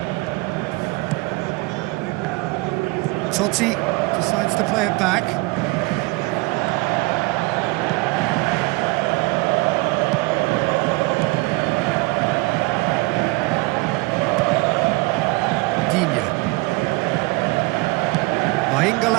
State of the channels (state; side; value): quieter; left; 24.5 dB